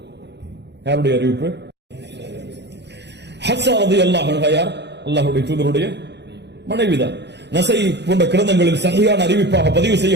யாருடைய அறிவிப்பு? ஹஃப்ஸா ரலியல்லாஹு அன்ஹா யார்? அல்லாஹ்வுடைய தூதருடைய மனைவிதான். நஸை போன்ற கிரந்தங்களில் சஹீஹான அறிவிப்பாக பதிவு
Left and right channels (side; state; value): left; late; 0.50 ms